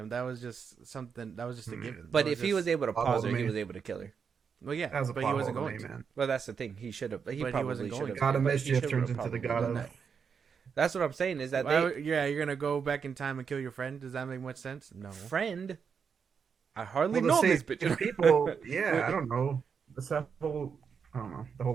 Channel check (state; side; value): quieter; left; 6.4 dB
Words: That was just something. That was just a given. But That if he just- was able to plot pause hole her, to he me. was able to kill her. well, yeah, That was a but plot he wasn't hole to going me, to. man. Well, that's the thing. He should have. He But he probably wasn't should going have. to. God of but he Mischief should've turns into probably the God done of. that. That's what I'm saying. Is that Yeah, you're gonna go back in time and kill your friend. Does that make much sense? No. friend? I hardly Well, know to this save bitch. people, yeah, I don't know. It's that whole, I don't know, the whole